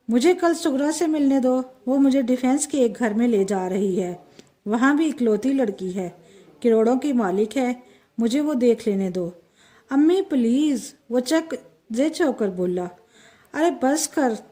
مجھے کل سغرا سے ملنے دو، وہ مجھے ڈیفینس کے ایک گھر میں لے جا رہی ہے، وہاں بھی اکلوتی لڑکی ہے، کروڑوں کی مالک ہے، مجھے وہ دیکھ لینے دو۔ امی پلیز، وہ چک زچ ہو کر بولا۔ ارے بس کر،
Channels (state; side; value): identical; both; correlation 1.00